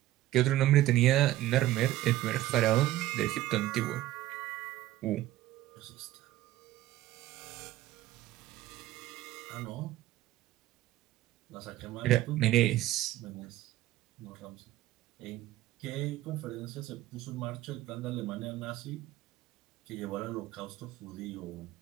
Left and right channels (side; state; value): left; quieter; 15.3 dB